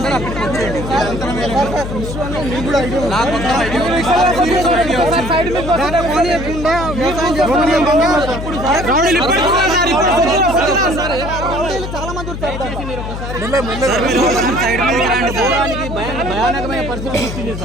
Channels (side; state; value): left; noise; hum, 7 dB below the sound